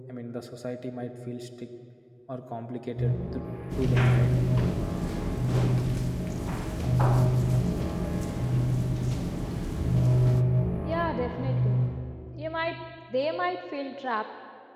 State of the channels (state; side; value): identical; both; correlation 1.00